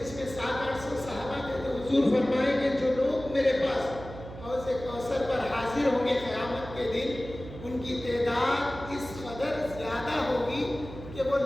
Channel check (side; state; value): right; noise; hum, 13 dB below the sound